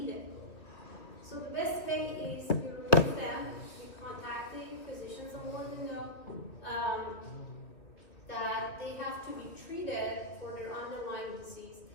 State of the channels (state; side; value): late; right; 2.7 ms